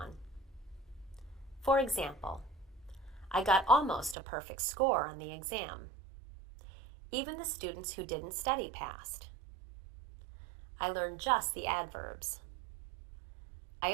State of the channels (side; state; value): left; drops out; at 4.2 s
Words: For example, I got almost a perfect score on the exam. Even the students who didn't study passed. I learned just the adverbs.